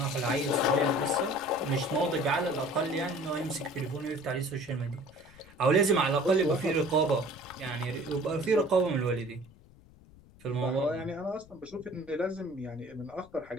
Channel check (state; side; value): noise; left; rumble, 24 dB below the sound